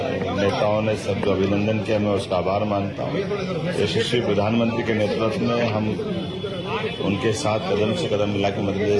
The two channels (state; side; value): identical; both; correlation 1.00